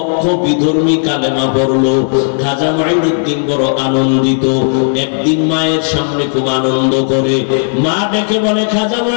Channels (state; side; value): silent; right; digital silence